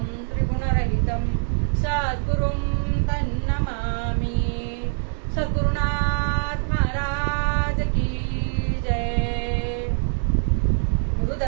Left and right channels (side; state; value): left; silent; 63 dB below the other